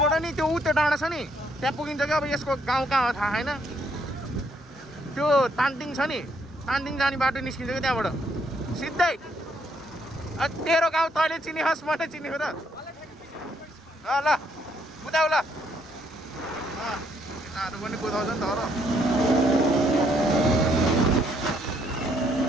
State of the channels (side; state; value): both; normal; correlation 0.71